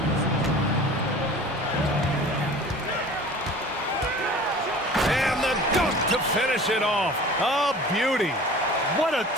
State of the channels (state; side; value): normal; both; correlation 0.43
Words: And the dunk to finish it off. A beauty. What a